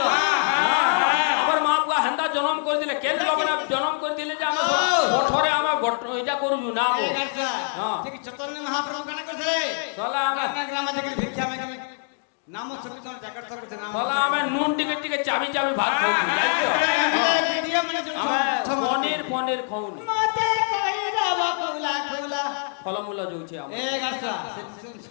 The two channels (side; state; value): right; silent; 57 dB below the other